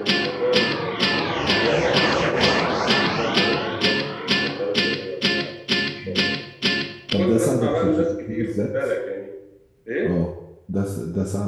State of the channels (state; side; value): identical; both; correlation 1.00